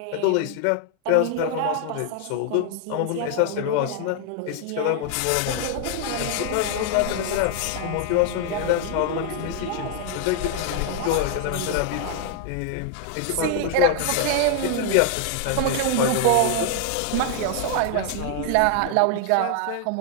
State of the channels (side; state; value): both; different; correlation 0.00